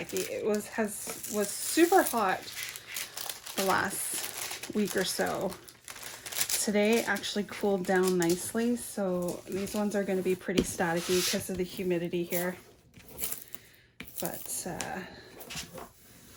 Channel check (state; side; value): identical; both; correlation 1.00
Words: It was super hot the last week or so. Today actually cooled down nicely, so these ones are going to be pretty staticky because of the humidity here. But